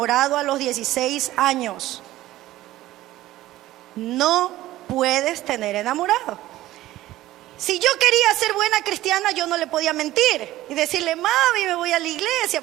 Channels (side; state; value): left; quieter; 15.6 dB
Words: a los 16 años. No puedes tener enamorado. Si yo quería ser buena cristiana, yo no le podía mentir y decirle, mami, me voy a la iglesia,